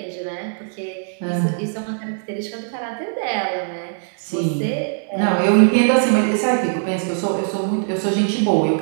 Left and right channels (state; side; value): silent; left; digital silence